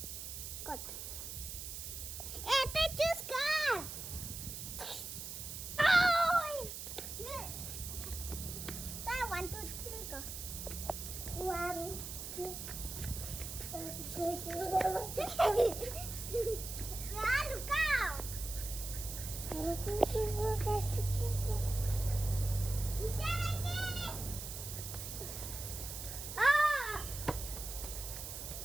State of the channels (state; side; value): noise; right; hiss, 7 dB below the sound